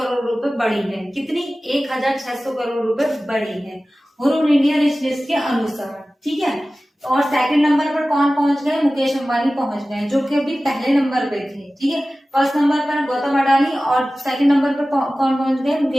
रुपए बढ़ी है। कितनी? 1600 करोड़ रुपए बढ़ी है ह्रून इंडिया रिच लिस्ट के अनुसार। ठीक है, और सेकंड नंबर पर कौन पहुंच गए? मुकेश अंबानी पहुंच गए जो कि अभी पहले नंबर पे थे। ठीक है, फर्स्ट नंबर पर गौतम अडानी और सेकंड नंबर पर कौन पहुंच गए?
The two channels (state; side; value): normal; both; correlation 0.96